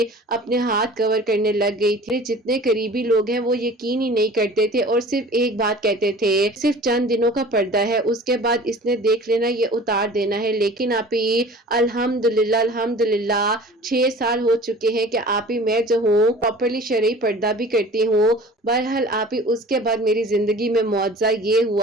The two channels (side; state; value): both; normal; correlation 0.43